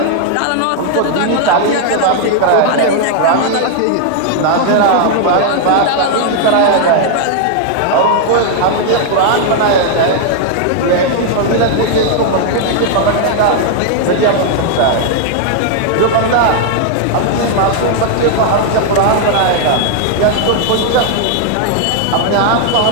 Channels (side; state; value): both; different; correlation 0.00